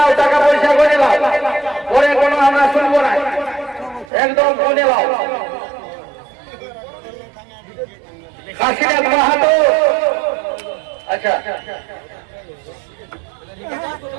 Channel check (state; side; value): drops out; left; at 4.1 s